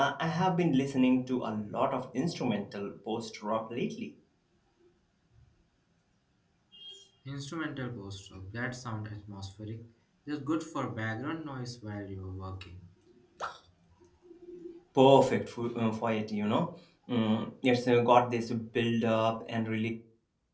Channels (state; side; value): identical; both; correlation 1.00